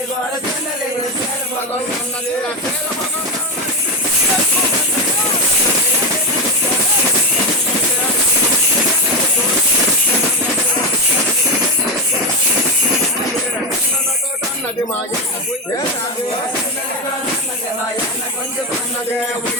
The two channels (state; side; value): normal; both; correlation 0.14